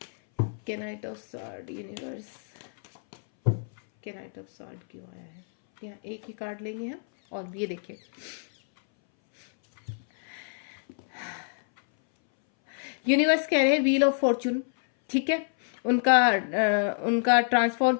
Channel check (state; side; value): silent; right; 60 dB below the other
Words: night of sword universe, night of sword क्यों आया है। यहाँ एक ही कार्ड लेंगे हम, और ये देखिए यूनिवर्स कह रहे हैं व्हील ऑफ फॉर्चून, ठीक है, उनका ट्रांसफॉर्म